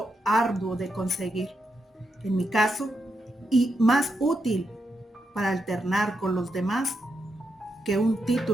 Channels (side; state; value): both; normal; correlation 0.84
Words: arduo de conseguir, en mi caso, y más útil para alternar con los demás que un